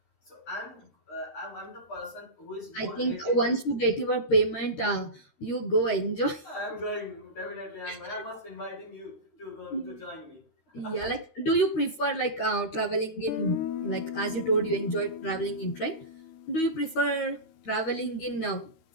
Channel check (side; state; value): right; late; 13 ms